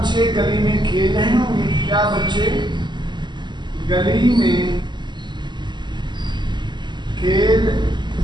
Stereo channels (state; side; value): late; left; 0.22 ms